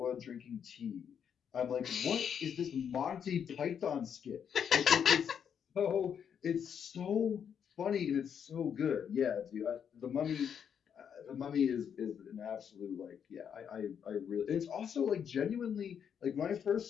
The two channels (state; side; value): quieter; right; 7.9 dB